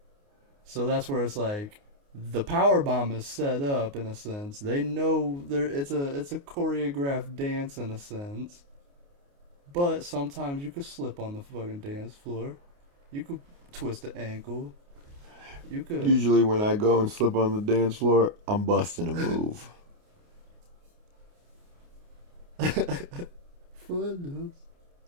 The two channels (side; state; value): left; late; 29 ms